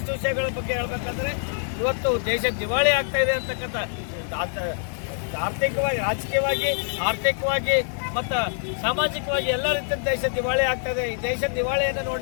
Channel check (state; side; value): silent; right; 62 dB below the other